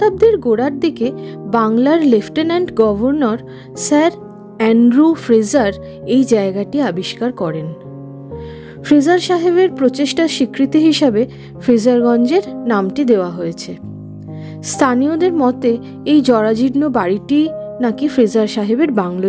গোড়ার দিকে বাংলার lieutenant governor sir Andrew Fraser এই জায়গাটি আবিষ্কার করেন। ফ্রেজার সাহেবের প্রচেষ্টার স্বীকৃতি হিসাবে ফ্রেজারগঞ্জের নামটি দেওয়া হয়েছে। স্থানীয়দের মতে এই জরাজীর্ণ বাড়িটি নাকি ফ্রেজার সাহেবের বাংলো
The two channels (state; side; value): identical; both; correlation 1.00